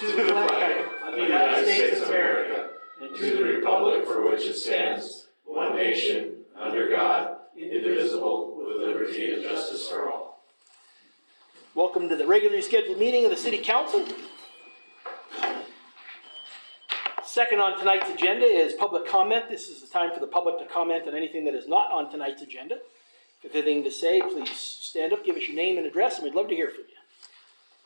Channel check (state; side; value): inverted; both; correlation -1.00